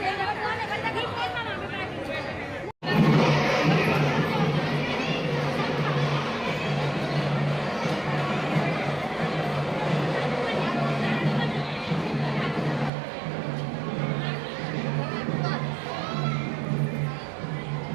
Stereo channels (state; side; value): drops out; left; at 12.9 s